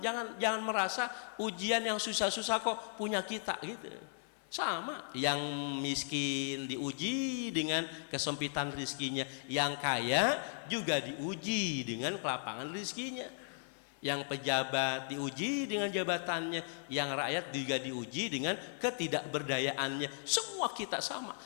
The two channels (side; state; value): right; silent; 53 dB below the other